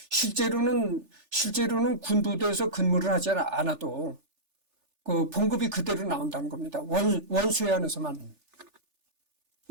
실제로는 군부대에서 근무를 하지 않아도 그 봉급이 그대로 나온다는 겁니다. 원수에 한해서만.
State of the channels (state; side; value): late; left; 3.4 ms